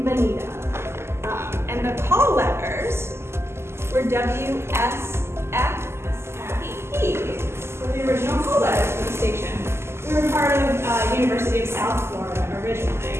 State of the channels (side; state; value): left; late; 0.12 ms